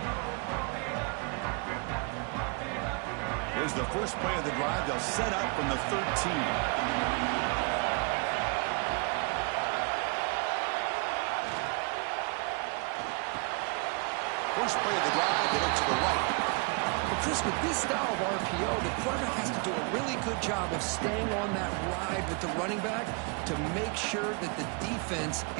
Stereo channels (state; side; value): quieter; left; 33.0 dB